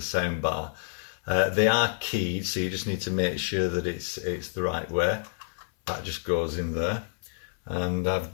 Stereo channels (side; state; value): right; silent; 59 dB below the other